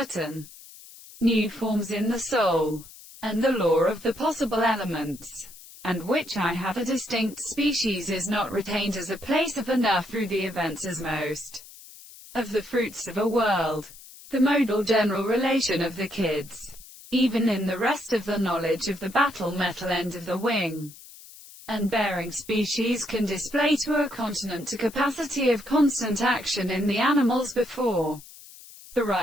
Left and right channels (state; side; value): noise; left; hiss, 19 dB below the sound